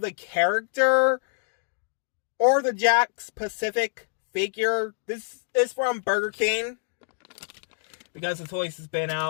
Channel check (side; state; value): right; silent; digital silence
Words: the character or the Jack's Pacific figure. This is from Burger King, because the toys has been